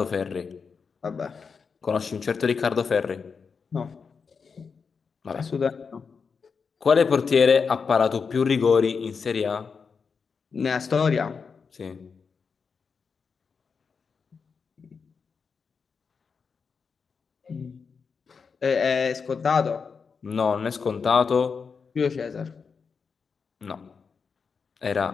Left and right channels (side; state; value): right; quieter; 5.5 dB